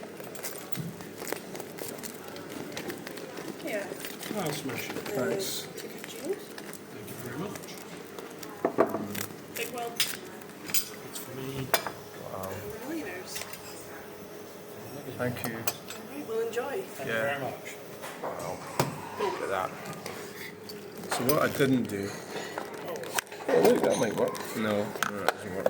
Yeah. I'll smash it. Thanks. Thank you very much. Big one. That's for me. Wow. Millionaires. Thank you. Alright, well enjoy. Thank you very much. Wow. Look at that. So what I didn't do. Oh look, that might work. No, that doesn't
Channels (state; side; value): identical; both; correlation 1.00